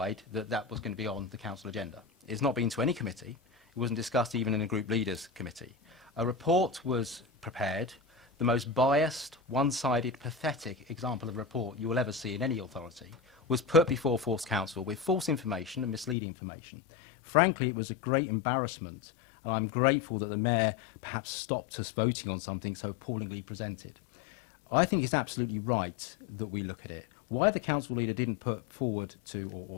that that was going to be on the council agenda. It's not been to any committee. It wasn't discussed even in a group leaders committee. A report was prepared, the most biased, one-sided, pathetic example of a report you will ever see in any authority, was put before Force Council with false information and misleading information. Frankly, it was a great embarrassment, and I'm grateful that the Mayor perhaps stopped us voting on something so appallingly presented. I think it's absolutely right that we look at it. Why the council leader didn't put forward to,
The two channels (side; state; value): right; drops out; at 16.2 s